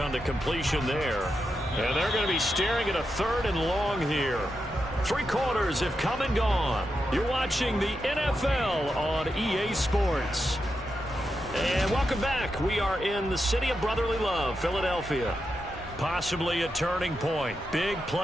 the completion there. And they're going to be staring at a 3rd and long here. 3 quarters have come and gone. You're watching the NFL on EA Sports. And welcome back. We are in the city of brotherly love, Philadelphia. Possibly a turning point. Big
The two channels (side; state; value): both; normal; correlation 0.86